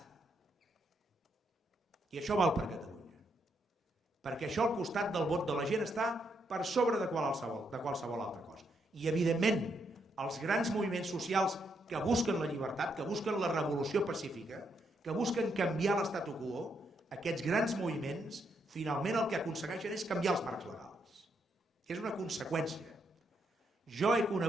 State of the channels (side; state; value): both; normal; correlation 0.77